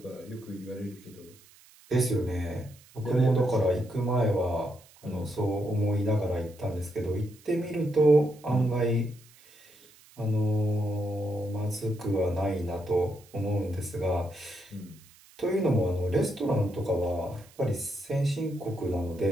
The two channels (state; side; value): noise; right; hiss, 26 dB below the sound